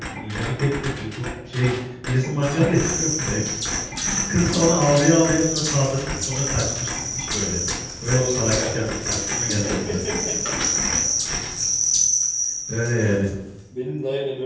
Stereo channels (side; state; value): both; identical; correlation 1.00